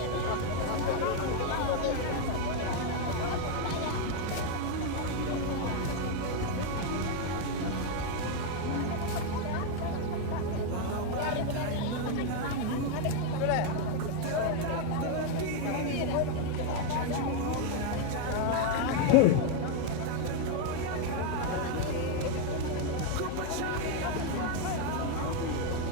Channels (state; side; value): different; both; correlation 0.01